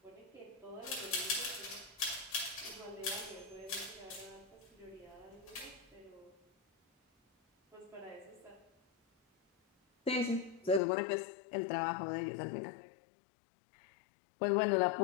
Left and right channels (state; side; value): drops out; right; at 10.8 s